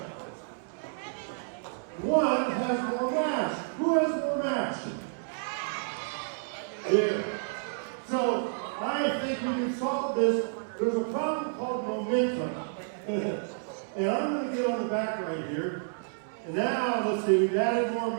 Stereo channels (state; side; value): silent; left; 58 dB below the other